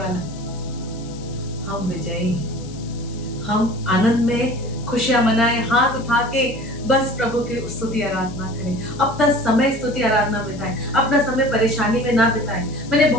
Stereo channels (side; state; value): left; noise; hiss, 20 dB below the sound